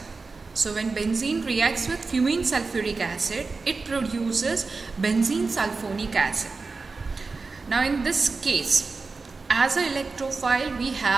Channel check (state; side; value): quieter; left; 4.1 dB